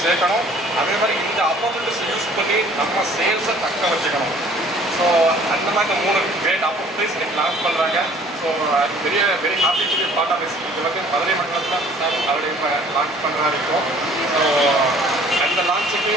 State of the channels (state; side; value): normal; both; correlation 0.54